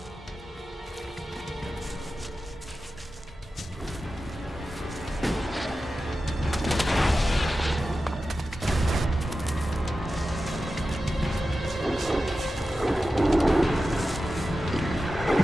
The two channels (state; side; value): normal; both; correlation 0.93